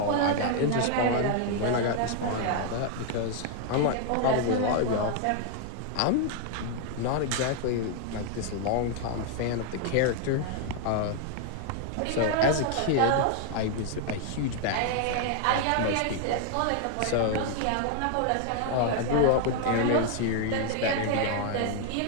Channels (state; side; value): different; both; correlation 0.00